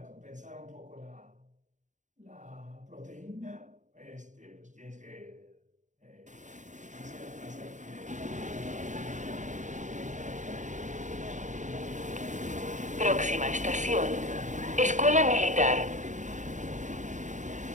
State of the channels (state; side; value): late; left; 0.36 ms